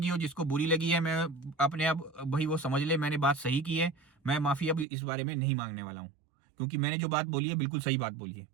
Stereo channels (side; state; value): left; drops out; at 4.9 s